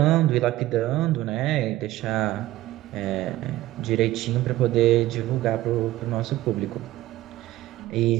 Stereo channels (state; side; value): quieter; left; 15.9 dB